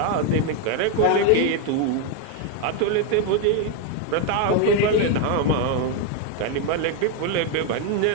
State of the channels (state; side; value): different; both; correlation 0.01